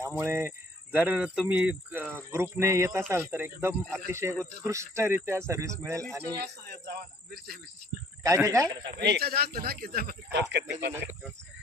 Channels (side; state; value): both; normal; correlation 0.59